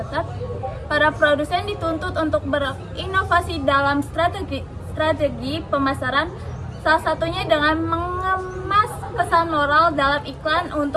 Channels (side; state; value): both; identical; correlation 1.00